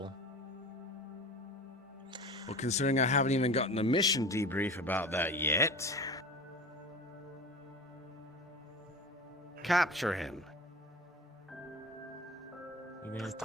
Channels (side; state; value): both; normal; correlation 0.33